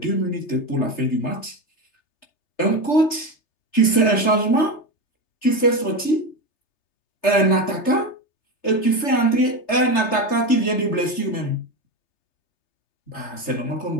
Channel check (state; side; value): late; right; 3.3 ms